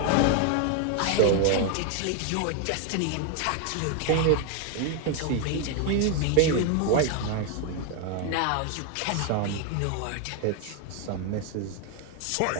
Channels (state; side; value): different; both; correlation 0.01